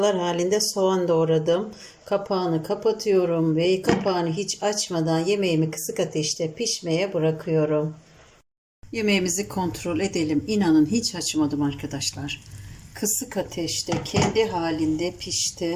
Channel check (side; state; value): both; identical; correlation 1.00